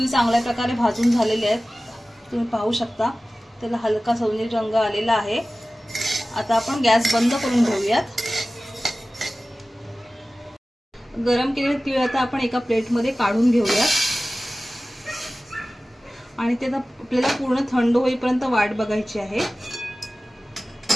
चांगल्या प्रकारे भाजून झालेले आहेत। तुम्ही पाहू शकता त्याला हलका सोनेरी रंग आलेला आहे। आता आपण गॅस बंद करून घेऊयात। गरम केलेले तीळ आता आपण एका प्लेटमध्ये काढून घेऊयात आणि ते आता आपल्याला पूर्ण थंड होईपर्यंत वाट बघायची आहे।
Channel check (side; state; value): both; normal; correlation 0.96